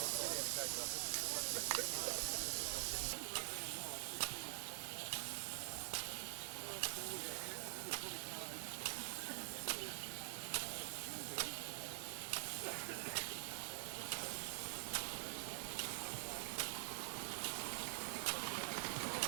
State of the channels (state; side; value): silent; left; digital silence